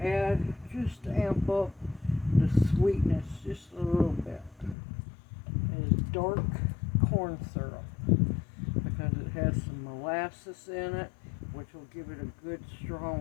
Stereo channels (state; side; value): drops out; right; at 4.8 s